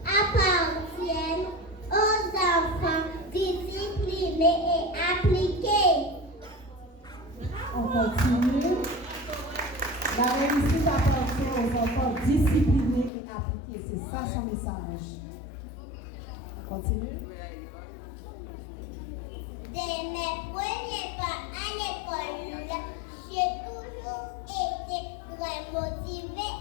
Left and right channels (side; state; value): right; drops out; at 13.1 s